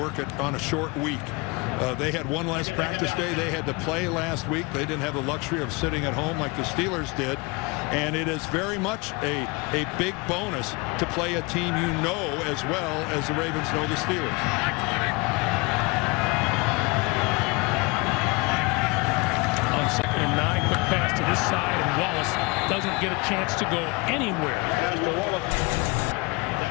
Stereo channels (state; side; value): quieter; right; 27.3 dB